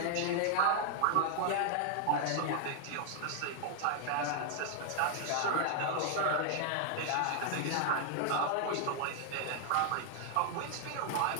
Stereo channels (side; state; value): both; different; correlation 0.00